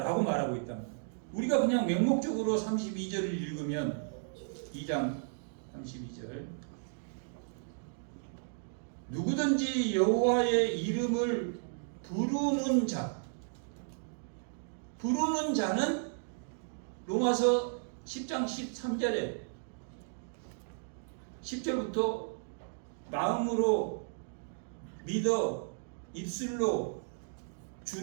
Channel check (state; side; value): silent; left; digital silence